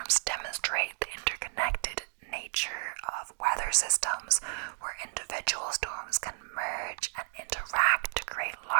demonstrate the interconnected nature of weather systems, where individual storms can merge and interact to create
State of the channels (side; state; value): left; silent; digital silence